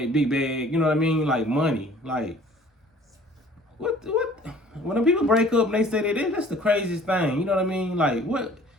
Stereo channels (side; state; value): both; normal; correlation 0.52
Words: big bag, you know what I mean? Like money. Like what when people break up and they say that's the craziest thing, you know what I mean? Like what